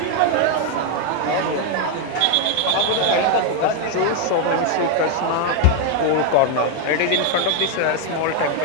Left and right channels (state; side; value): different; both; correlation 0.01